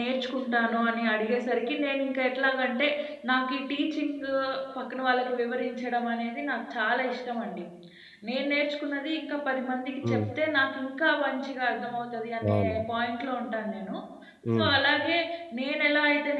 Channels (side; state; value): both; identical; correlation 1.00